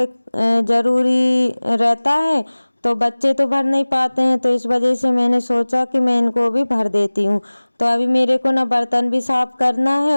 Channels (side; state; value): both; inverted; correlation -1.00